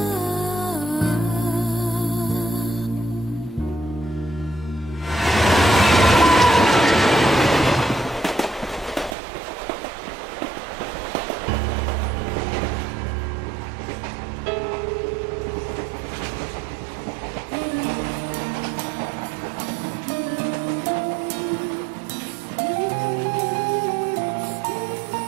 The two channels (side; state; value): left; drops out; at 9.2 s